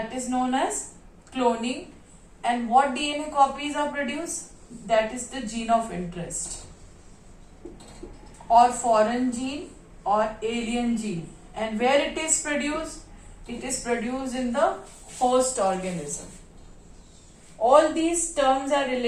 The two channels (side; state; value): both; identical; correlation 1.00